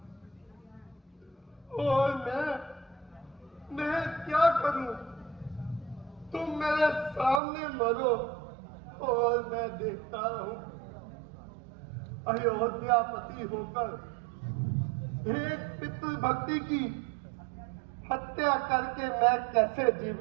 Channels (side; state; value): left; drops out; at 7.4 s